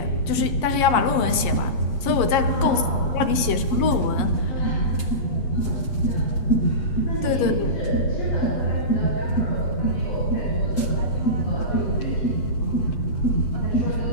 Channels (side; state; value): right; late; 8.3 ms